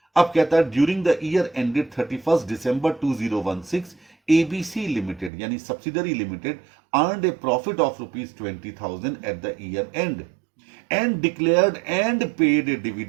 अब कहता है during the year ended 31 December 2016 ABC limited यानी subsidiary limited earned a profit of ₹20,000 at the year end and declared and paid a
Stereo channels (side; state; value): left; drops out; at 5.3 s